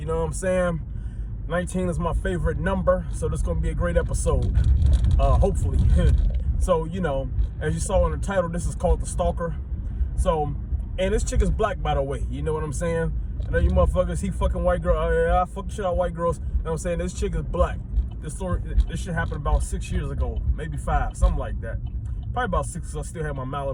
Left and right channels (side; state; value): both; identical; correlation 1.00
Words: know what I'm saying? 19 is my favorite number, so this is going to be a great episode, hopefully. So, you know, as you saw in the title, this is called The Stalker. So, and this chick is black, by the way, you know what I'm saying? I know you motherfuckers, he fucking white girl, I fuck shit out white girls, you know what I'm saying? This chick is black. This shit happened about 6 years ago, maybe 5, something like that. Probably about 6, because I still had my